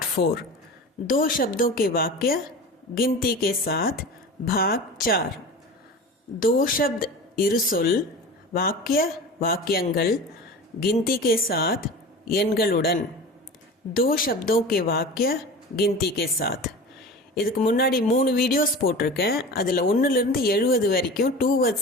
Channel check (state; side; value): normal; both; correlation 0.34